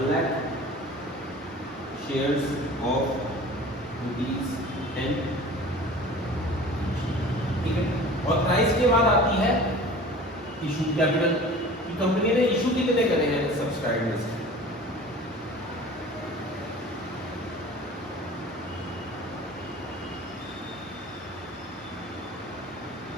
shares of ₹10, ठीक है। और प्राइस के बाद आती है इशू कैपिटल कि कंपनी ने इशू कितने करे हैं सब्सक्राइब लिस्ट।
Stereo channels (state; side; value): normal; both; correlation 0.42